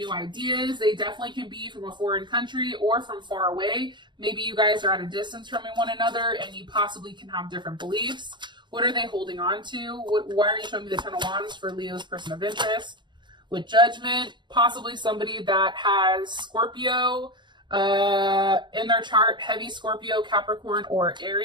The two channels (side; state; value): left; late; 0.22 ms